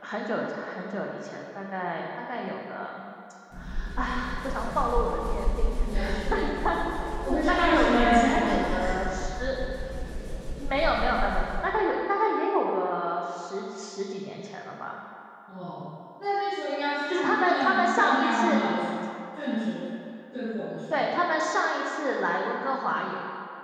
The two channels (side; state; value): both; identical; correlation 1.00